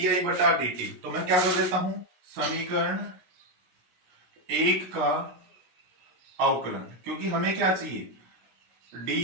आई बटा डी टी, तो मैं क्या कर देता हूं, समीकरण 1 का अवकलन, क्योंकि हमें क्या चाहिए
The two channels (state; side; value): late; left; 16 ms